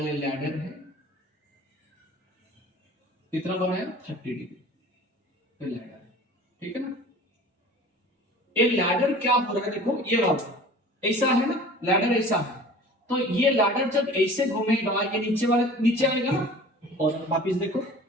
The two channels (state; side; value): normal; both; correlation 0.43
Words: लैडर है, कितना बनाया? 30 डिग्री लैडर, ठीक है ना? ये लैडर क्या हो रहा है, देखो ये वाला ऐसा है ना, लैडर ऐसा है, तो ये लैडर जब ऐसे घूमेगा ये नीचे वाले नीचे आएगा ना, और वापिस देखो